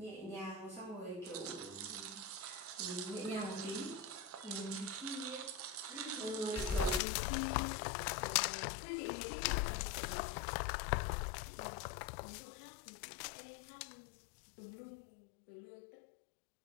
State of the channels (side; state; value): right; drops out; at 7.0 s